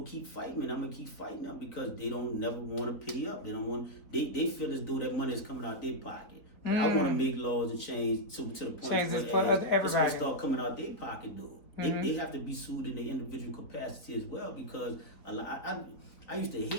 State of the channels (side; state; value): right; late; 3.6 ms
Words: keep fighting me, and I'm gonna keep fighting them, because they don't never want to pay up. They don't want. They feel as though that money is coming out their pocket. But I want to make laws and change to the point where it's gonna start coming out their pocket, though. They have to be sued in their individual capacity as well, because I used to